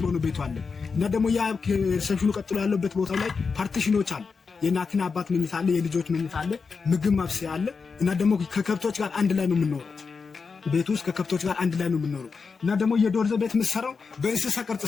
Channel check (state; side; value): quieter; right; 5.1 dB